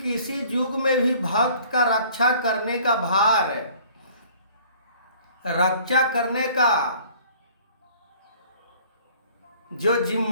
युग में भी भक्त का रक्षा करने का भार, रक्षा करने का जो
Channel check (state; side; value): inverted; both; correlation -0.53